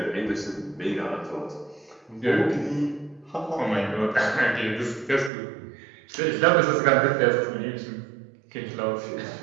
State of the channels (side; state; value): left; drops out; at 5.3 s